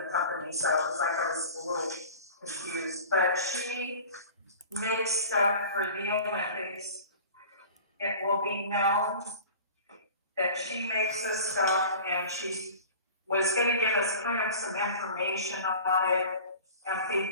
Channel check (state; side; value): inverted; both; correlation -0.40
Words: the company, so it was like I was a little confused, but she makes stuff for the Olympics. It will be known that she makes this stuff, and she was gonna give us kind of some information on it and